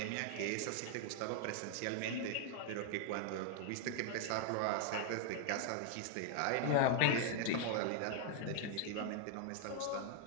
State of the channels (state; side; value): different; both; correlation 0.00